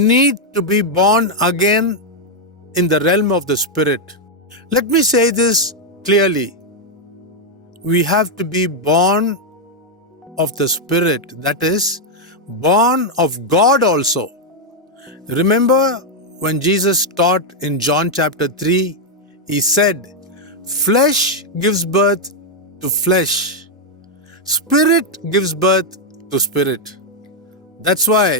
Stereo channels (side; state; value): both; normal; correlation 0.00